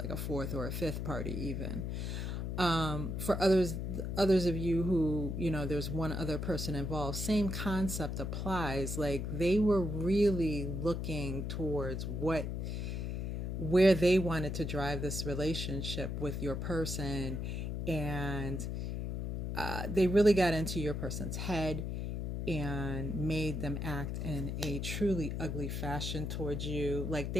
a fourth or a fifth party even. For others of you who, there's one other person involved, same concept applies. Like, they were really looking towards where they wanted to drive this relationship with your person, and they really got into your person's head and made them act in a truly ugly fashion towards you. Like,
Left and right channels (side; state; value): left; noise; hum, 3 dB below the sound